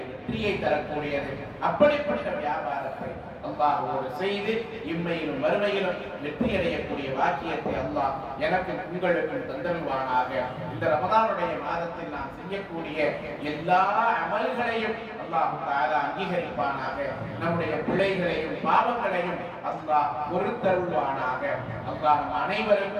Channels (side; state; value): both; identical; correlation 1.00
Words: வெற்றியை தரக்கூடியது. அப்படிப்பட்ட வியாபாரத்தை அல்லாஹ்வோடு செய்து இம்மையிலும் வறுமையிலும் வெற்றி அடையக்கூடிய வாக்கியத்தை அல்லாஹ் எனக்கு உங்களுக்கும் தந்தருவானாக. இந்த ரமதானுடைய மாதத்தில் நாம் செய்யக்கூடிய எல்லா அமல்களையும் அல்லாஹ் தஆலா அங்கீகரிப்பானாக. நம்முடைய பிழைகளையும் பாவங்களையும் அல்லாஹ் பொறுத்தருள்வானாக. அல்லாஹ் நம்